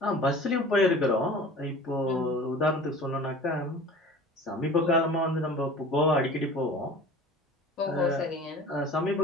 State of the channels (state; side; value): normal; both; correlation 0.41